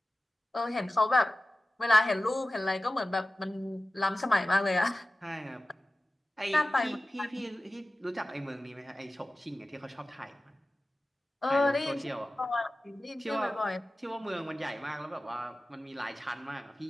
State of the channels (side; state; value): both; normal; correlation 0.96